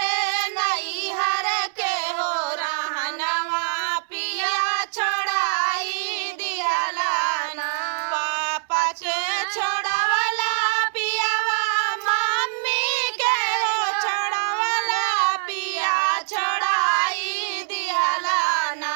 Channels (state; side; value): silent; left; digital silence